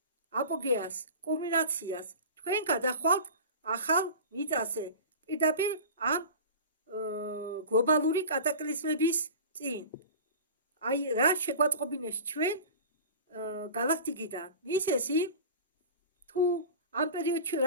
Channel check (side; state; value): both; inverted; correlation -0.35